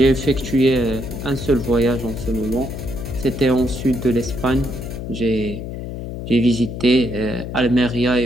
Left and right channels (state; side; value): noise; left; hum, 7 dB below the sound